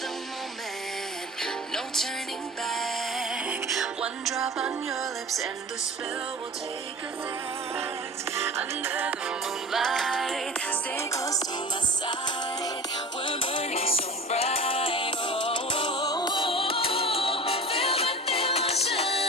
moment, no turning back. One drop on your lips and the spell will take effect. Under the moonlight.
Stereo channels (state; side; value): normal; both; correlation 0.36